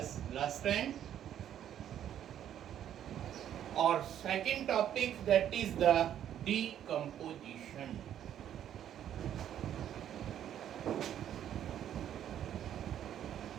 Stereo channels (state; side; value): quieter; left; 10.4 dB